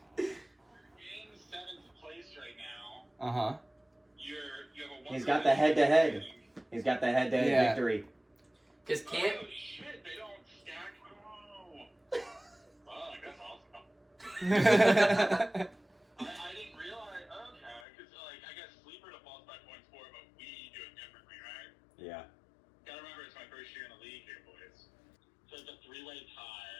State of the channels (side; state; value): right; drops out; at 17.8 s